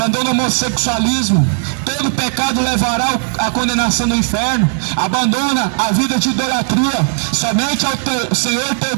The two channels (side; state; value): left; silent; digital silence